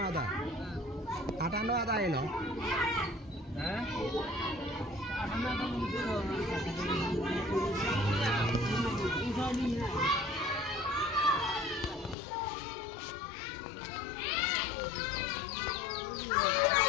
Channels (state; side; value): drops out; right; at 12.2 s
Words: আধা 58 আধা এলো হ্যাঁ